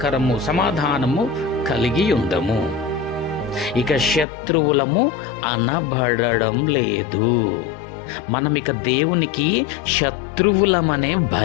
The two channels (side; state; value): right; drops out; at 4.2 s